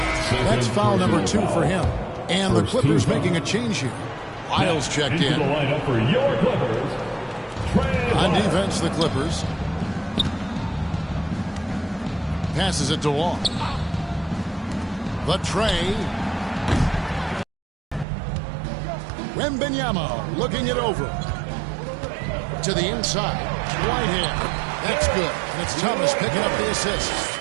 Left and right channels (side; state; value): left; drops out; at 18.1 s